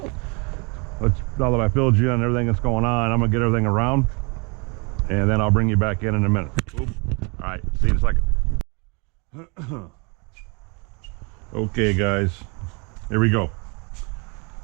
now that I filled you on everything that's going on, I'm gonna get everything around, and then I'll bring you back in a minute. Oop. All right, see you in a second. Okay, guys, here we go.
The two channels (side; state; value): left; quieter; 31.1 dB